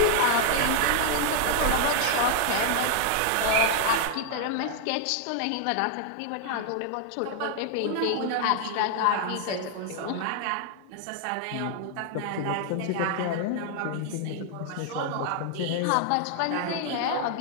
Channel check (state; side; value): different; both; correlation 0.00